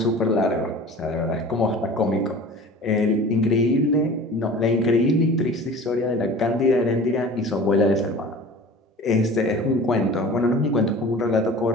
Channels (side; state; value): both; normal; correlation 0.41